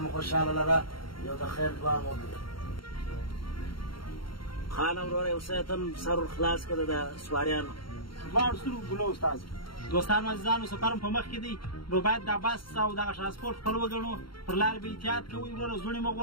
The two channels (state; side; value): late; right; 0.73 ms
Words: خوشحاله لره. یو د خیر دعا مو وکړه. خانم وروره یو څه ته سر خلاص کړه د سواریانو. دواړو سترګو ګلو استاد. دوستانو عزیزانو سفر په مخ کې دی، نو باید دا بس او دغه ترانسپورټ خپل وګڼو. پر لار به احتیاط کوئ وروره، زوړې مه